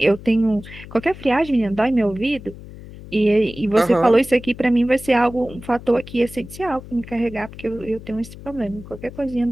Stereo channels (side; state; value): left; noise; hum, 16 dB below the sound